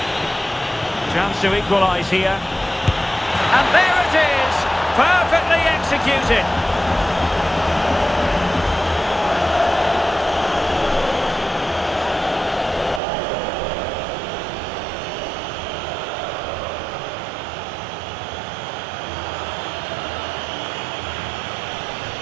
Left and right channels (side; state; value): left; drops out; at 13.0 s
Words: Chance to equalise here. And there it is! Perfectly executed.